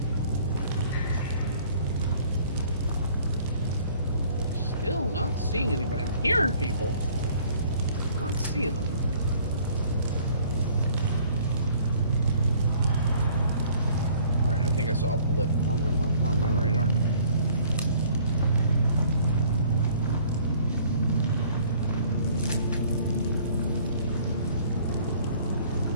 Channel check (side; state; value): both; inverted; correlation -0.56